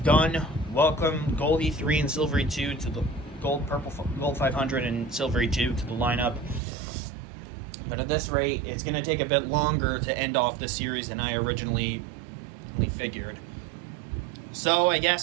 Welcome Gold E3 and Silver E2 to the Gold 500 and Silver E2 to the lineup. But at this rate, it's going to take a bit longer to end off the series than I originally figured. So I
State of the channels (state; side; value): drops out; left; at 6.6 s